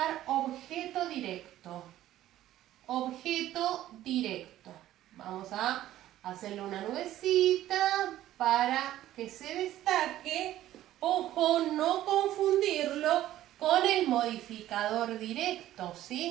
objeto directo. Objeto directo. Vamos a hacerle una nubecita para que se destaque. Ojo, no confundirlo con el modificador directo,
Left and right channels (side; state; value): left; quieter; 13.6 dB